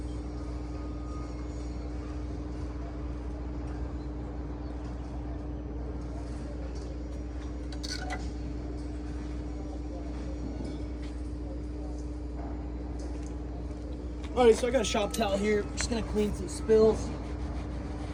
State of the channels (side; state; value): both; identical; correlation 1.00